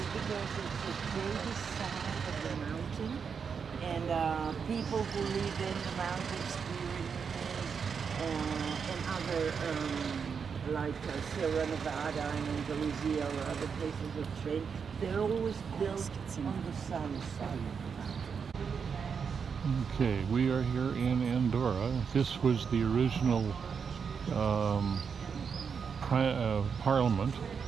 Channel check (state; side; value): quieter; left; 6.3 dB